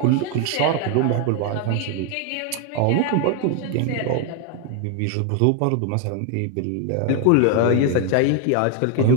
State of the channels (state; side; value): different; both; correlation 0.01